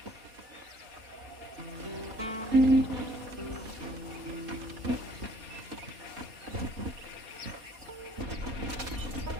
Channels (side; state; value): left; late; 4.3 ms